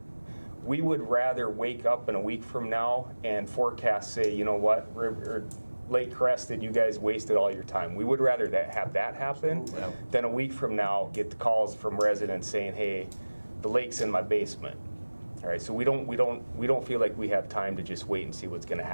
We would rather wake up in a week from now and forecast, say, you know what, Lake Crested, you guys wasted all your time. We would rather have that happen than a week from now get the calls from residents saying, hey, the lake's in my basement. All right, so we don't feel like we have time to just wait and see what's going to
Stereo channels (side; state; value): both; inverted; correlation -1.00